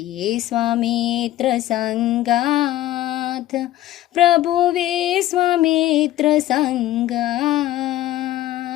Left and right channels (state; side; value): quieter; right; 14.4 dB